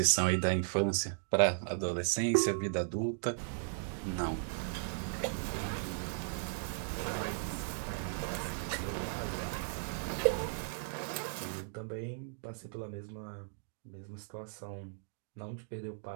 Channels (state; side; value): silent; left; digital silence